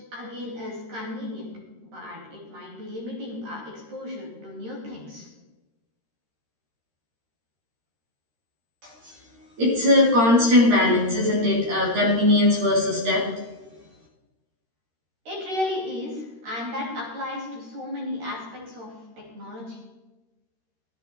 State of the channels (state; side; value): late; left; 13 ms